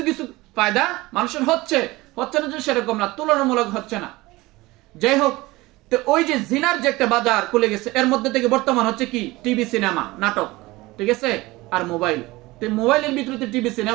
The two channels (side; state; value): left; quieter; 20.4 dB